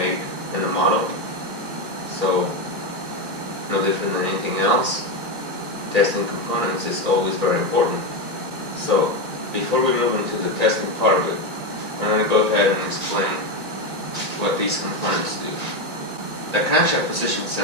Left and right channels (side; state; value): left; late; 1.8 ms